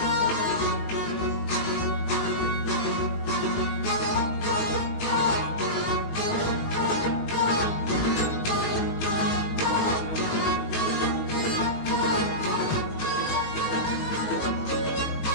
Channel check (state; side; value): late; right; 19 ms